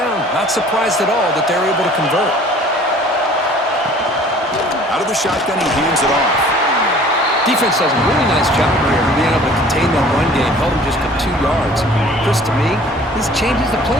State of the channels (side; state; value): both; normal; correlation 0.51